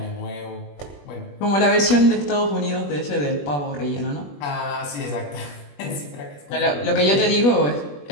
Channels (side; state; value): right; late; 21 ms